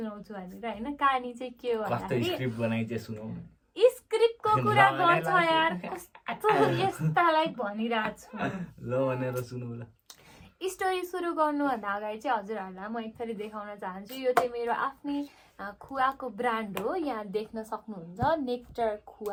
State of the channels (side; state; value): both; identical; correlation 1.00